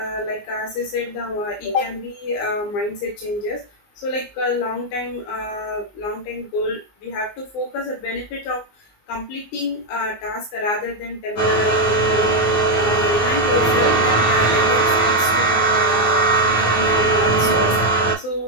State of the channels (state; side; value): late; right; 19 ms